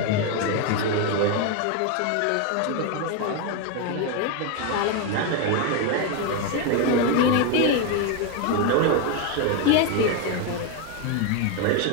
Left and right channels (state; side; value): different; both; correlation 0.02